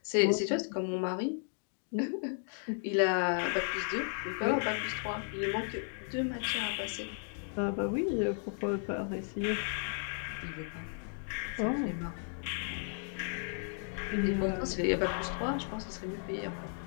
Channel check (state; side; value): silent; right; 55 dB below the other